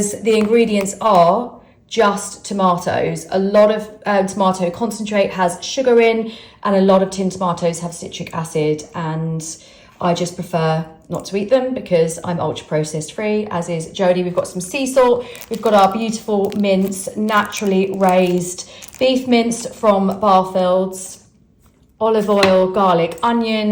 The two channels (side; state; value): both; identical; correlation 1.00